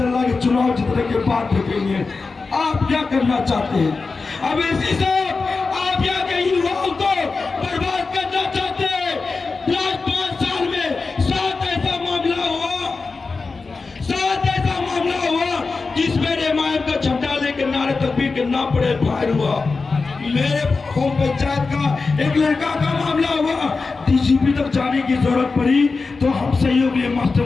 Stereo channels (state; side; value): quieter; right; 4.2 dB